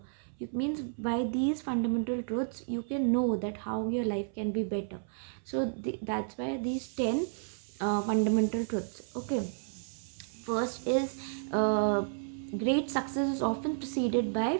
It means by these fundamental truths you can know that how your life can be better. So that's why these 10 fundamental truths. Okay, first is great success is often preceded by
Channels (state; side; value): silent; left; 56 dB below the other